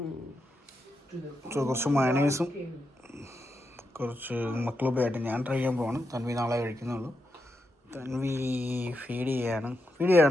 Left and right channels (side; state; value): both; normal; correlation 0.85